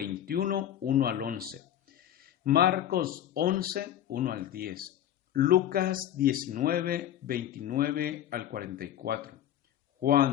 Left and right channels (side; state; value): right; quieter; 11.2 dB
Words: 1 al 11, Marcos 11, 1 al 10, Lucas 19, 29 al 44,